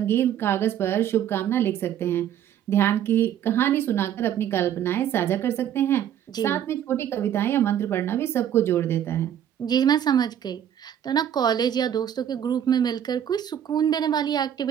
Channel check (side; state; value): left; quieter; 10.0 dB